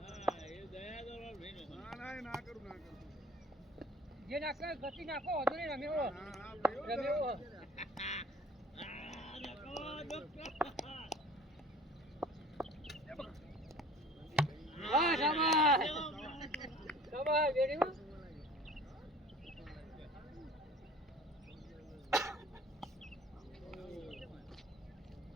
ના ના કરું જે નાખે ગતિ નાખો વધુ નહીં રમ્યો રમ્યો હા શાબાશ શાબાશ બેટિંગ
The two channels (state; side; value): normal; both; correlation 0.47